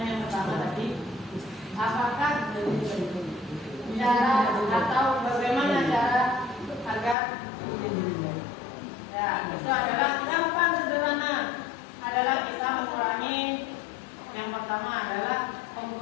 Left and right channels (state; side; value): drops out; right; at 7.2 s